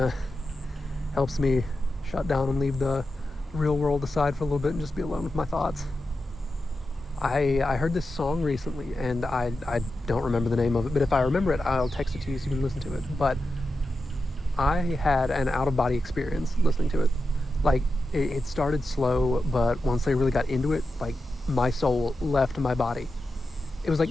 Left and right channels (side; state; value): both; normal; correlation 0.90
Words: Helps me shut down and leave the real world aside for a little bit and just be alone with my thoughts. I heard this song recently and I don't remember the name of it, but if I remember it, I'll text it to you so you can listen to it. But I had an out of body experience listening to it. Like, it started slow, but once they really got into it, like, my soul left my body. It was